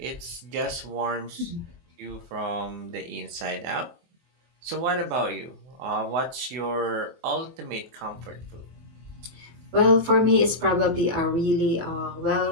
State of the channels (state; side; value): late; left; 24 ms